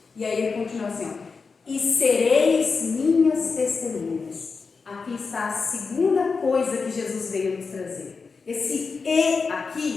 E aí ele continua assim, ó, e sereis minhas testemunhas. Aqui está a segunda coisa que Jesus veio nos trazer. Esse e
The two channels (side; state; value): right; quieter; 4.8 dB